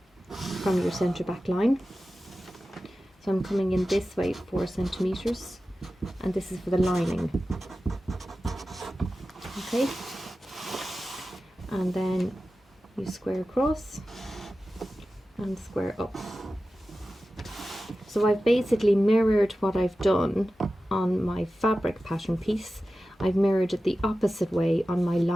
from your centre back line. So I'm coming in this way 4 centimeters, and this is for the lining. Okay, and then you square across and square up. So I've basically mirrored what I've done on my fabric pattern piece. I've mirrored it the opposite way on my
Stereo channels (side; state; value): both; normal; correlation 0.94